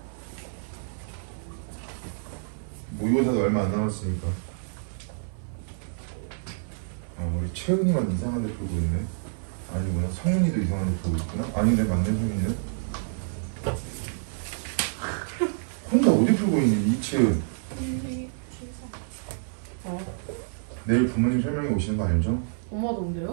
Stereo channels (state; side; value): silent; left; digital silence